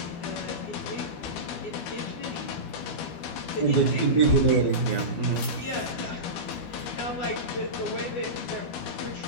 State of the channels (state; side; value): late; right; 12 ms